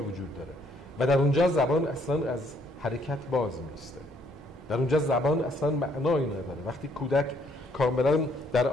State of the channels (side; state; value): both; normal; correlation 0.67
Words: وجود داره و در اونجا زبان اصلا از حرکت باز میسته. در اونجا زبان اصلا معنایی نداره. وقتی کودک کاملا در